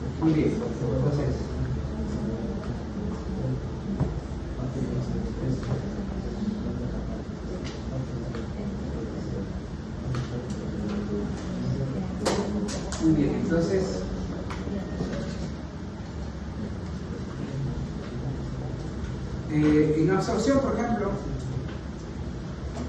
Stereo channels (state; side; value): identical; both; correlation 1.00